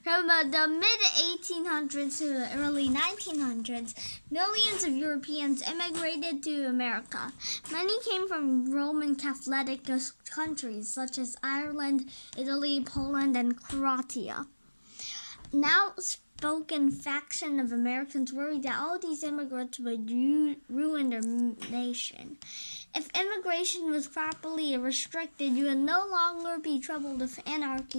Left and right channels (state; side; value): inverted; both; correlation -1.00